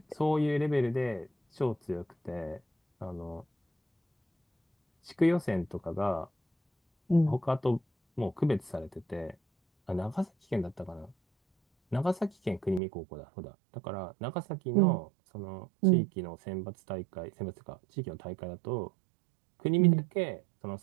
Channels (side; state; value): left; drops out; at 12.8 s